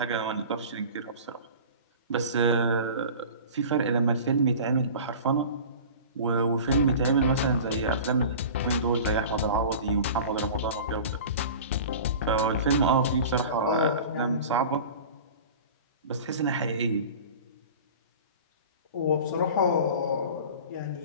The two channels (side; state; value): both; inverted; correlation -0.38